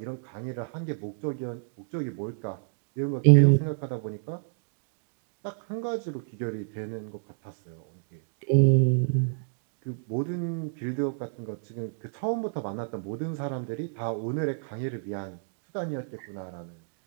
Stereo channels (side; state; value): left; silent; digital silence